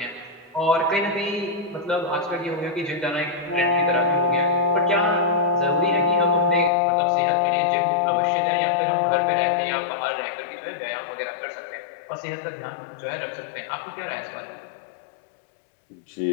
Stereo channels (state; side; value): drops out; right; at 6.7 s